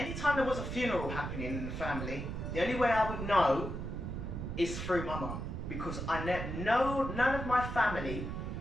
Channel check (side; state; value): right; noise; rumble, 5 dB below the sound